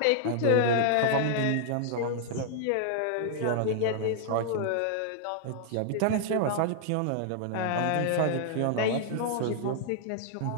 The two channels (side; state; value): both; different; correlation -0.01